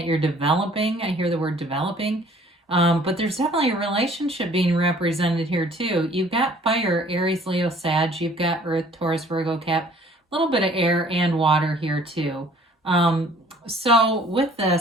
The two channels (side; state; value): both; normal; correlation 0.55